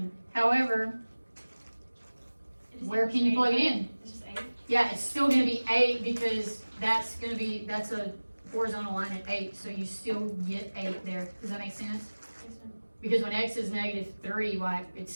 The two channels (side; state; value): both; inverted; correlation -1.00